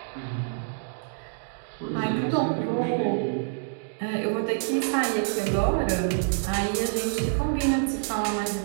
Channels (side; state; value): left; silent; digital silence